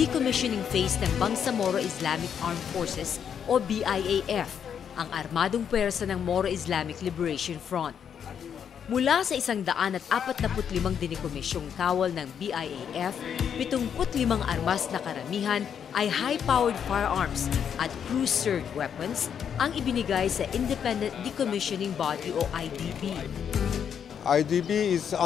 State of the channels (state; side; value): quieter; right; 8.0 dB